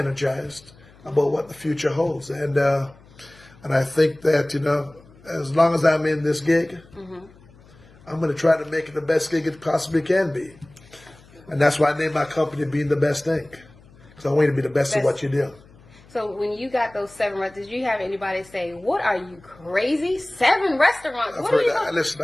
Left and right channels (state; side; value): noise; left; hum, 26 dB below the sound